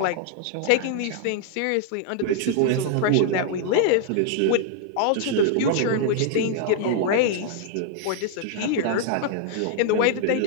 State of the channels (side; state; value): both; different; correlation -0.01